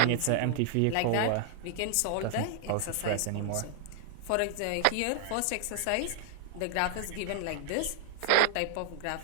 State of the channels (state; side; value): different; both; correlation 0.00